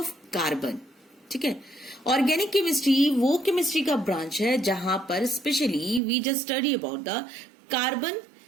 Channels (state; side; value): drops out; left; at 6.0 s